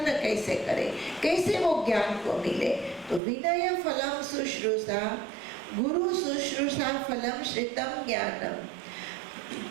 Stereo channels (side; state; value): left; drops out; at 3.2 s